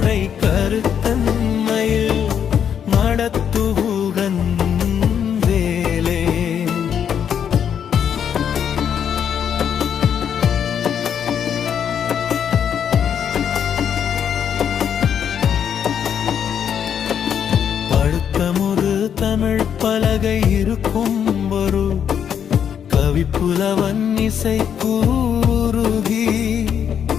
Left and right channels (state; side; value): quieter; right; 8.4 dB